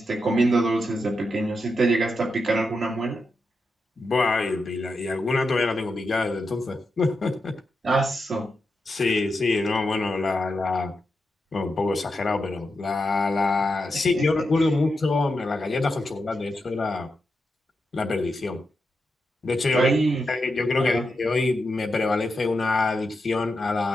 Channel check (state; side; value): normal; both; correlation 0.87